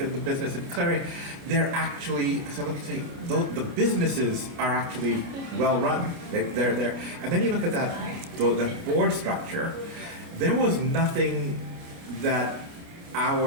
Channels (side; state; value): left; late; 29 ms